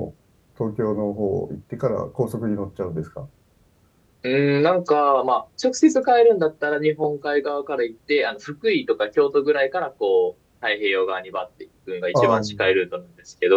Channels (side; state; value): both; identical; correlation 1.00